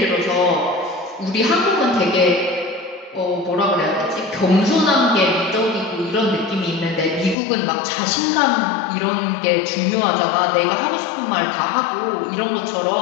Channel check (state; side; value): drops out; right; at 7.4 s